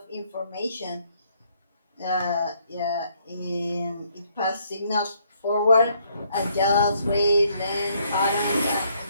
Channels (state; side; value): inverted; both; correlation -0.69